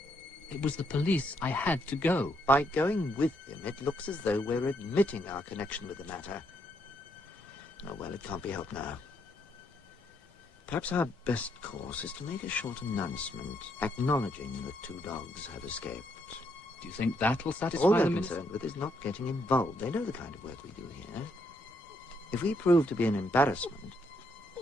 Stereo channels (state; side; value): normal; both; correlation 0.75